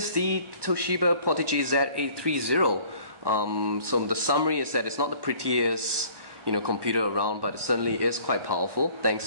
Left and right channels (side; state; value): left; late; 1.2 ms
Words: the Toshiba Portege Z830. So the summary is that it's not the prettiest computer around, but it certainly is quite powerful